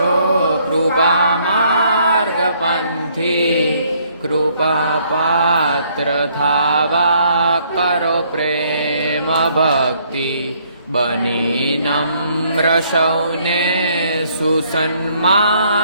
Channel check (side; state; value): both; inverted; correlation -0.66